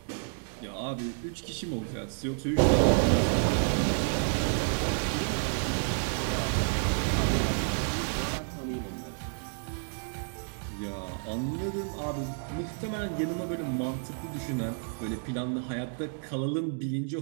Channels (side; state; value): left; silent; 56 dB below the other